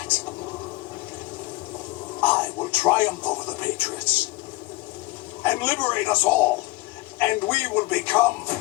I will triumph over the Patriots and liberate us all, and we will become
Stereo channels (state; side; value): quieter; right; 20.9 dB